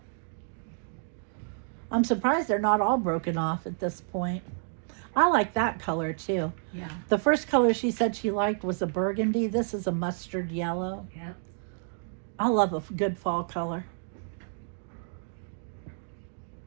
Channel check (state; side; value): silent; left; digital silence